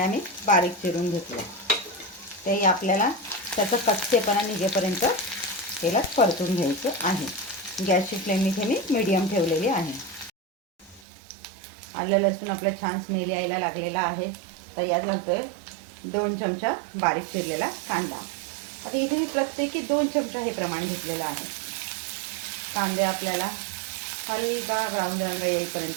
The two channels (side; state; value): left; drops out; at 11.0 s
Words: मी बारीक चिरून घेतल्या. ते आपल्याला त्याचा कच्चेपणा निघेपर्यंत तेलात परतून घ्यायचं आहे. गॅसची फ्लेम इथे मी मीडियम ठेवलेली आहे. आलं लसूण आपलं छान स्मेल यायला लागलेला आहे. तर यात घालतोय 2 चमचा बारीक चिरलेला कांदा. आता इथे मी प्रत्येकी 2 चमचा हे प्रमाण घेतलेलं आहे. कांदे आपल्याला हलका ब्राऊन रंग